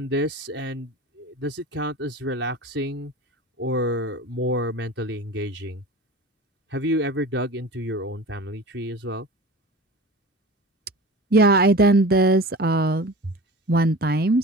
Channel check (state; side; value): normal; both; correlation 0.35